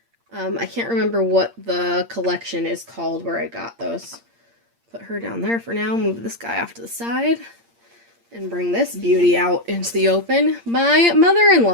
I can't remember what the collection is called where I got those. Put her down there for now, move this guy off to the side, and bring this beauty out into the open. My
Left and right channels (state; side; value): late; left; 8.6 ms